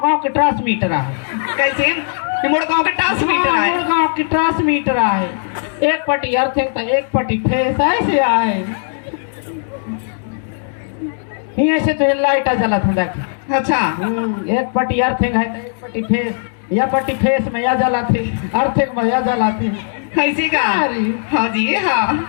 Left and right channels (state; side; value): silent; right; 68 dB below the other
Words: गांव के ट्रांसमीटर है कैसे ये मोड़ गांव के ट्रांसमीटर है गांव की ट्रांसमीटर है एक पट्टी अर्थिंग था एक पट्टी फेस ऐसे आए यहाँ से तो लाइट जला था देख अच्छा एक पट्टी अर्थिंग है एक पट्टी फेस या पट्टी फेस में या जला थी अर्थिंग में या जला थी कैसे का अरे। हाँ जी हाँ